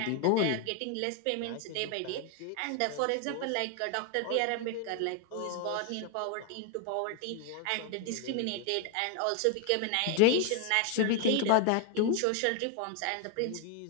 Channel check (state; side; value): different; both; correlation 0.01